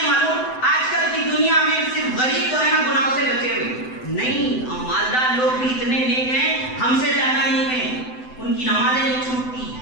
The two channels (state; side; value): late; right; 7.9 ms